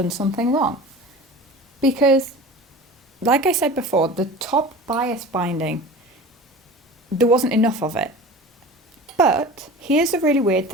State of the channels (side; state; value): both; normal; correlation 0.36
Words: something wrong because, like I said before, the top bias binding, there wasn't enough of it. But here's a really weird